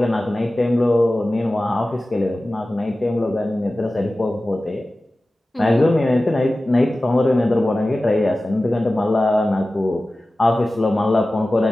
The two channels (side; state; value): both; normal; correlation 0.96